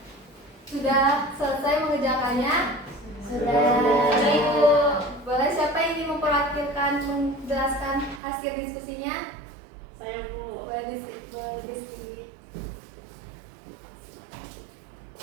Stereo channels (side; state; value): left; drops out; at 8.2 s